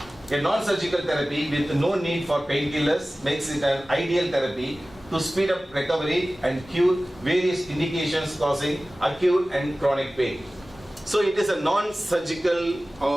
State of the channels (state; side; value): normal; both; correlation 0.97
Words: A non-surgical therapy with no need for painkillers makes it an ideal therapy to speed up recovery and cure various indications causing acute and chronic pain. So it is a non-surgical